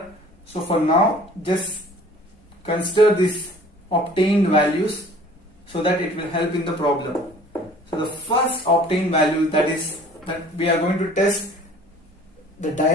So for now, just consider these obtained values so that it will help in the problem. So the first obtained value, that we are going to test the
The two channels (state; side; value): normal; both; correlation 0.50